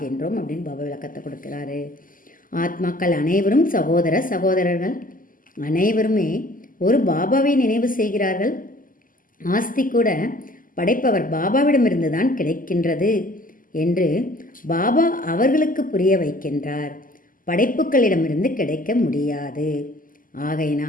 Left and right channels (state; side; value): late; right; 0.40 ms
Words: அப்படின்னு பாபா விளக்கத்தை கொடுக்கிறாரு. ஆத்மாக்கள் அனைவரும் சகோதர சகோதரர்கள். அனைவருமே ஒரு பாபாவை நினைவு செய்கிறார்கள். ஆஸ்தி கூட படைப்பவர் பாபாவிடமிருந்து தான் கிடைக்கின்றது என்று பாபா அவர்களுக்கு புரிய வைக்கின்றார். படைப்புகளிடமிருந்து கிடைக்க முடியாது.